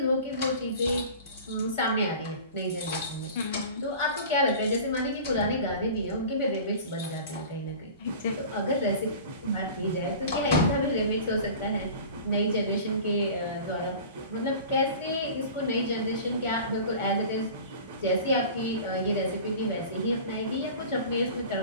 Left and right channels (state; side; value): inverted; both; correlation -0.39